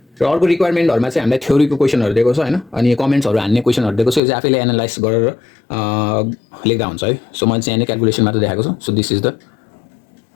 र अर्को रिक्वायरमेन्टहरुमा चाहिँ हामीलाई थ्योरीको क्वेशनहरु दिएको छ हैन, अनि कमेन्ट्सहरु हान्ने क्वेशनहरु दिएको छ। यो चाहिँ आफैले एनालाइज गरेर लेख्दा हुन्छ है। सो मैले चाहिँ यहाँ क्याल्कुलेसन मात्र देखाएको छु। So this is the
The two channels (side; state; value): right; drops out; at 4.2 s